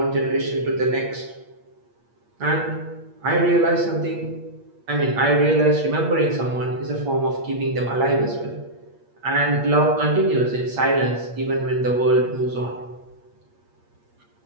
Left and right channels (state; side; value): late; left; 8.5 ms